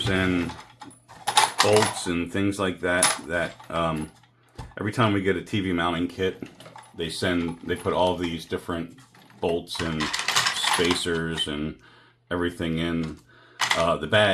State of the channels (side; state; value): both; identical; correlation 1.00